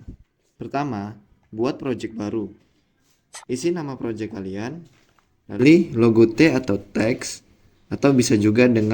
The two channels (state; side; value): identical; both; correlation 1.00